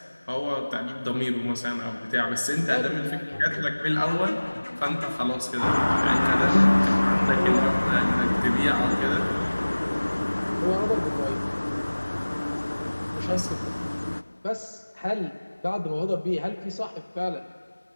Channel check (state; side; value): inverted; both; correlation -1.00